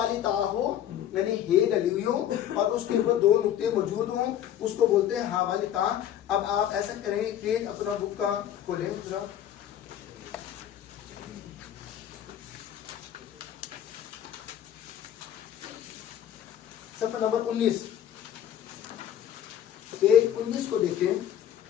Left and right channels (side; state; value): right; quieter; 10.7 dB